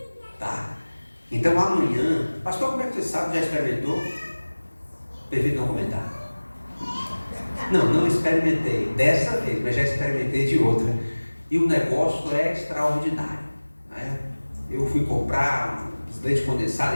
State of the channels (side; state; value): both; inverted; correlation -1.00